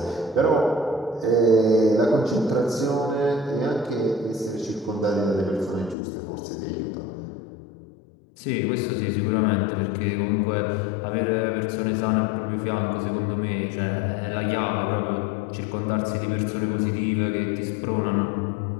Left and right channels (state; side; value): drops out; right; at 6.0 s